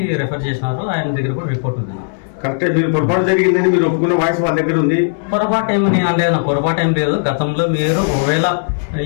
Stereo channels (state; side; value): silent; right; digital silence